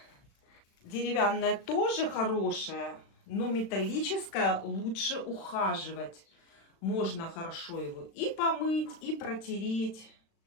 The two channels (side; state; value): right; late; 36 ms